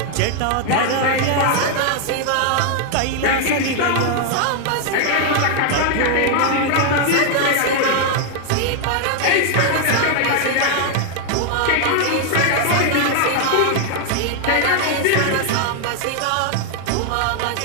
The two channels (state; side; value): different; both; correlation 0.00